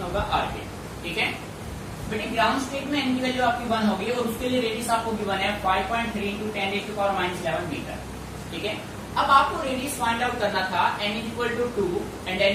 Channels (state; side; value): identical; both; correlation 1.00